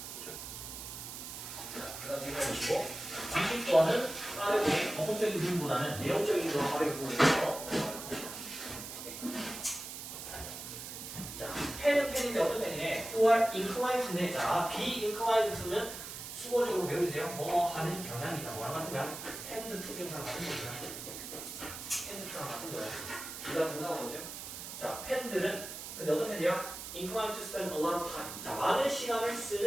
자, 그 다음 제가 보시고 20번은 빠르게 법적인 부분보다는 내용적인 거 빠르게 보면서 자, 펜은 펜인데 어떤 펜이네? who are inclined인데 자, be inclined to는 수어적으로 배워주세요. 뭐 하는 경향이 있다. 뭐랑 같은 거야? tend to 경상 같은 거야. tend to랑 같은 거야. 그 다음 동사가 뭐죠? 자, 펜들은 근데 어떤 펜이야? inclined to spend a lot of time. 자, 많은 시간을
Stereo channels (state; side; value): noise; right; hiss, 9 dB below the sound